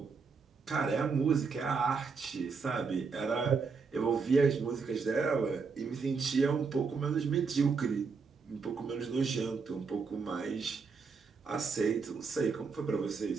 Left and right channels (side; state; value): left; quieter; 5.1 dB